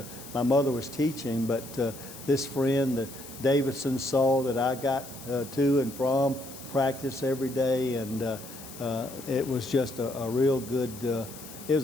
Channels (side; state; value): left; noise; hiss, 15 dB below the sound